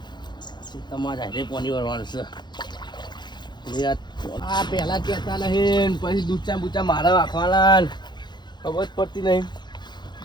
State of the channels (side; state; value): right; late; 0.21 ms